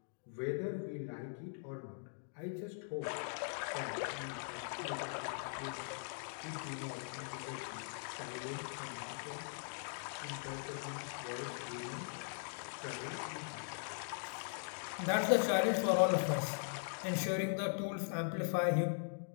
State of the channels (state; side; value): silent; right; digital silence